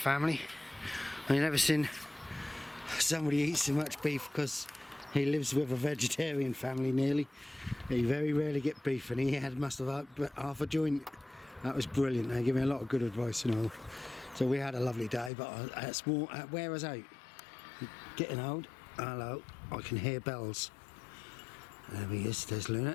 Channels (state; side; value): drops out; right; at 15.3 s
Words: I've never seen somebody eat so much beef because he lives with a vegetarian family nearly. He very rarely get beef and he must have half a joint. That was brilliant. They gave me a lot of good advice and all. So we had a lovely day, but where was I? Getting old. Hello, I can hear bells. There he is, there's